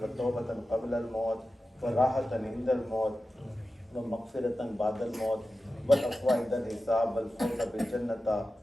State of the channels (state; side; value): normal; both; correlation 0.93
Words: wa tawbatan qabla al-maut wa rahatan inda al-maut wa maghfiratan ba'da al-maut wal afwa inda al-hisab wal fawza bil jannata